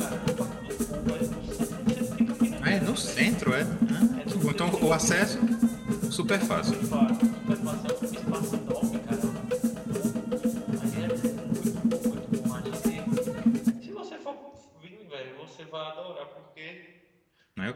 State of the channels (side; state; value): both; identical; correlation 1.00